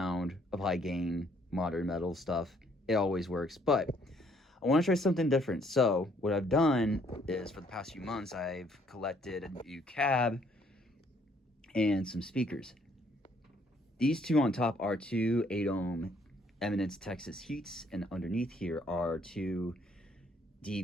of high gain modern metal stuff. It always works, but I want to try something different. So what I've done is, for the past few months, I've collected a new cab and some speakers. These two on top are two 8-ohm Eminence Texas Heats, and underneath here are two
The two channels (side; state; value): both; normal; correlation 0.66